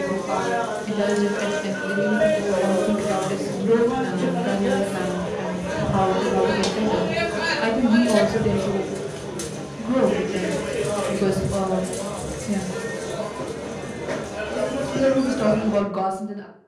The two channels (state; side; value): identical; both; correlation 1.00